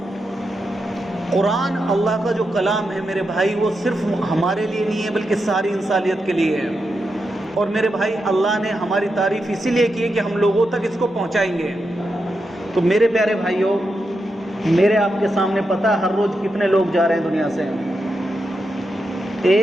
قرآن اللہ کا جو کلام ہے میرے بھائی، وہ صرف ہمارے لیے نہیں ہے بلکہ ساری انسانیت کے لیے ہے۔ اور میرے بھائی اللہ نے ہماری تعریف اسی لیے کی ہے کہ ہم لوگوں تک اس کو پہنچائیں گے۔ تو میرے پیارے بھائیوں، میرے آپ کے سامنے پتہ ہے ہر روز کتنے لوگ جا رہے ہیں دنیا سے؟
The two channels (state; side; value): normal; both; correlation 0.86